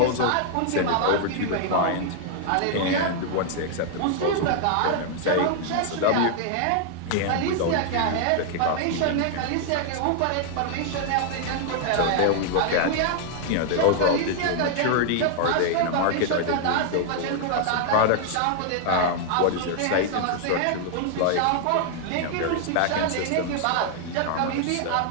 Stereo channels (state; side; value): different; both; correlation 0.00